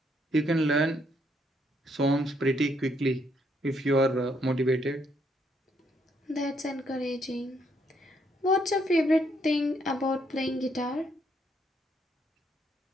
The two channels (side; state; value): both; normal; correlation 0.72